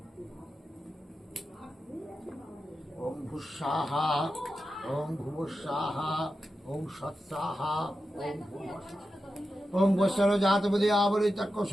ওং ভুস্সাহা ওং ভুবস্সাহা ওং সৎসাহা ওং ভূমস্সাহা ওং বৎসর জাতপদে আবরিতক্য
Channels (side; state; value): both; normal; correlation 0.91